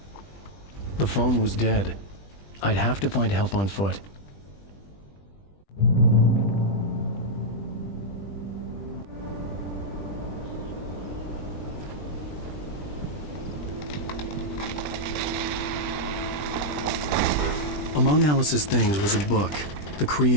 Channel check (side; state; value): right; late; 20 ms